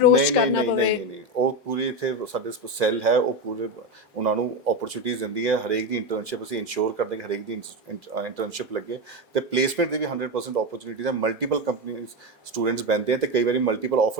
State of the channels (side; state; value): both; normal; correlation 0.14